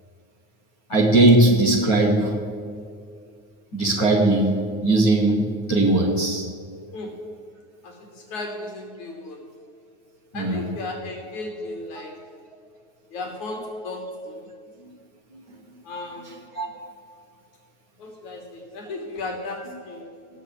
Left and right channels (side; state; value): right; late; 9.4 ms